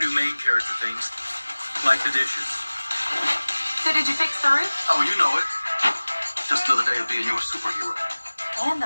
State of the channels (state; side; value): inverted; both; correlation -1.00